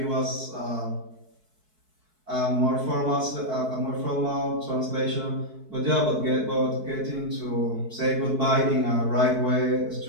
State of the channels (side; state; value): left; late; 4.6 ms